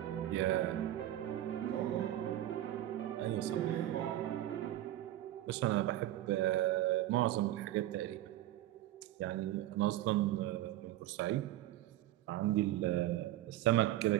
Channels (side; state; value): left; quieter; 14.2 dB